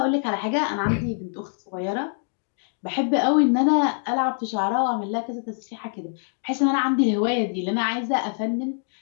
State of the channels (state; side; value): silent; right; 62 dB below the other